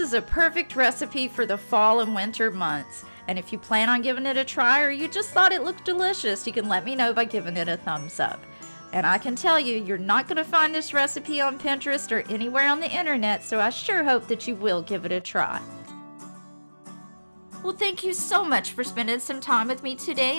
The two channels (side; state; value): both; inverted; correlation -1.00